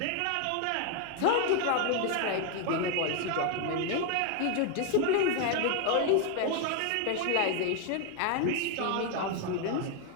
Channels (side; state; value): both; different; correlation 0.01